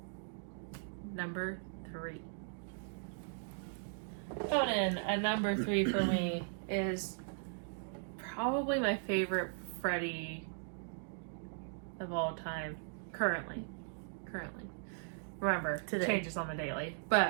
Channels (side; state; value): left; silent; digital silence